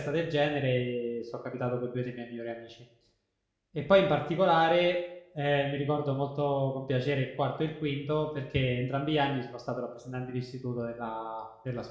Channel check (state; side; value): identical; both; correlation 1.00